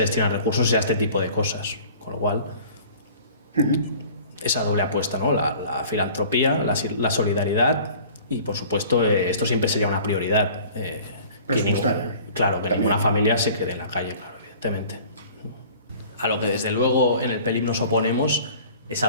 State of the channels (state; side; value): inverted; both; correlation -0.47